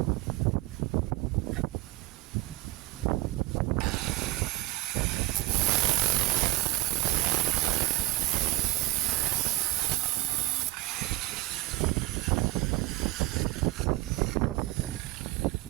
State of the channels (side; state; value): left; quieter; 18.1 dB